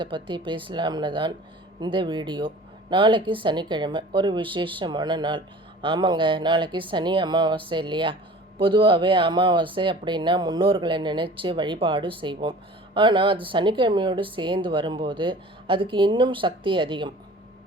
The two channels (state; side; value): normal; both; correlation 0.44